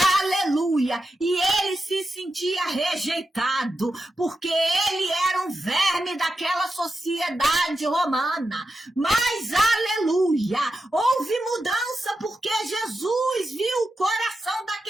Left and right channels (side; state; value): both; normal; correlation 0.89